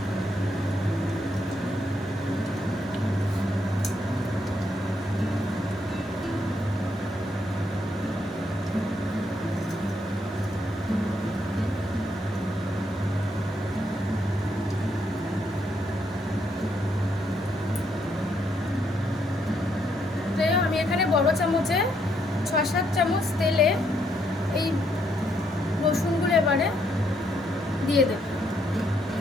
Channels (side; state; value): both; normal; correlation 0.75